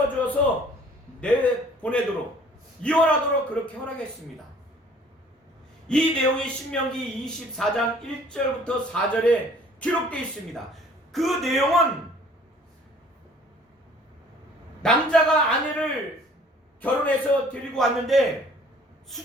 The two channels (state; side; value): normal; both; correlation 0.54